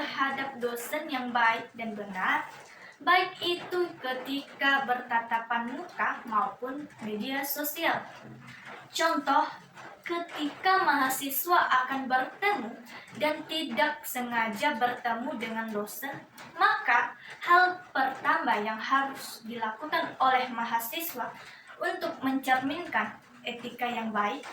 dosen yang baik dan benar, baik itu ketika bertatapan muka maupun media sosial. Contoh, ketika mahasiswa akan bertemu dan tidak sengaja bertemu dengan dosen, maka hal pertama yang harus dilakukan oleh mahasiswa untuk mencerminkan etika yang baik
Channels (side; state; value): both; identical; correlation 1.00